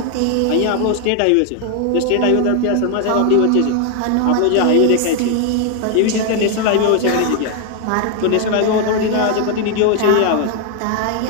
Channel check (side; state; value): both; different; correlation 0.00